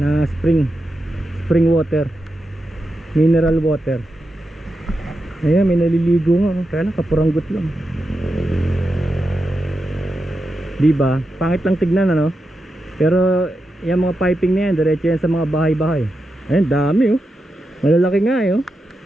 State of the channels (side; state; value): both; normal; correlation 0.88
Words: spring water, mineral water. Ayan, may naliligo nga, kaya lang kapuranggot lang. Diba? Pangit lang tignan, pero yung mga piping na yan, diretso yan sa mga bahay-bahay. Ayan, dami, malalaki nga,